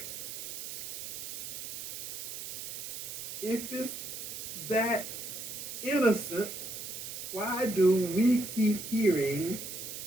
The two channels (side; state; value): right; noise; hiss, 7 dB below the sound